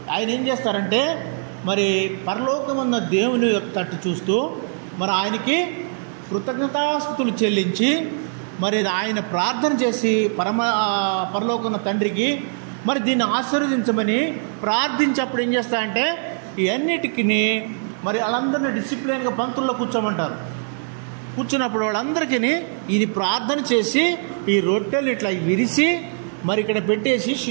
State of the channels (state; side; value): silent; left; 63 dB below the other